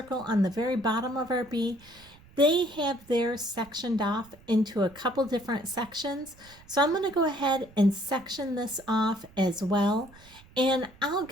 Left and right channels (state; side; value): noise; right; rumble, 24 dB below the sound